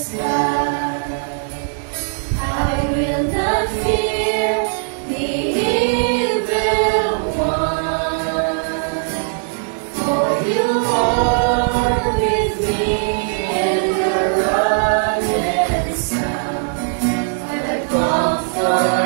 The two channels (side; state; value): left; silent; digital silence